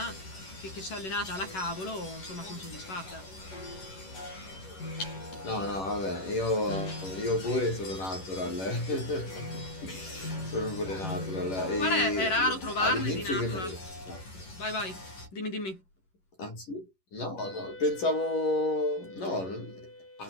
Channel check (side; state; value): right; late; 11 ms